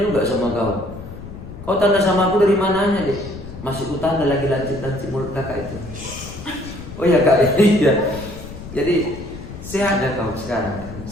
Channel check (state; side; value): noise; left; rumble, 13 dB below the sound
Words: sama kau. Kau tanda sama aku dari mananya deh? Masih ku tanda lagi lancip mulut kakak itu. Oh iya kak, iya. Jadi sehat ya kau sekarang?